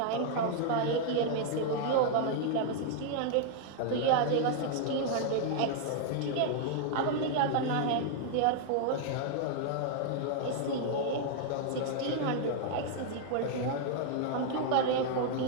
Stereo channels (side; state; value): both; different; correlation 0.00